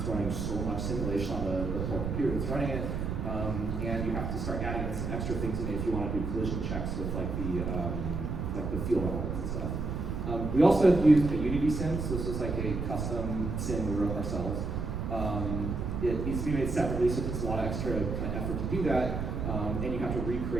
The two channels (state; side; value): noise; right; rumble, 3 dB below the sound